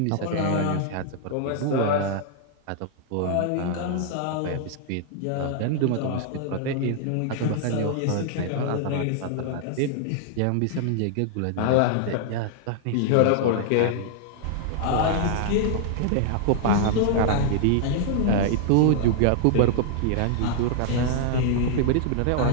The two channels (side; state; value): both; different; correlation -0.01